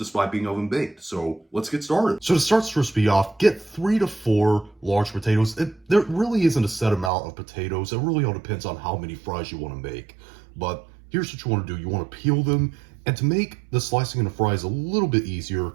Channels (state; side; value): drops out; left; at 7.1 s